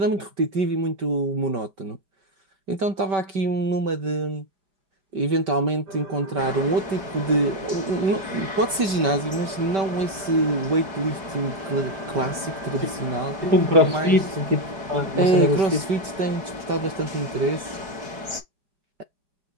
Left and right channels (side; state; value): left; late; 5.2 ms